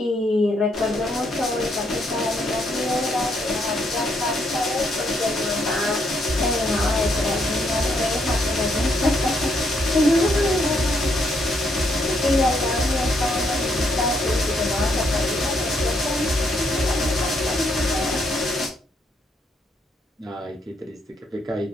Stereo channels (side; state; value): both; normal; correlation 0.74